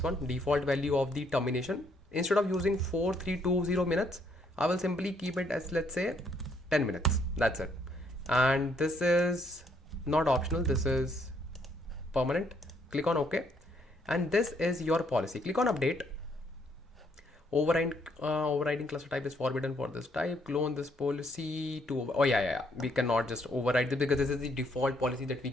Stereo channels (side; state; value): both; normal; correlation 0.69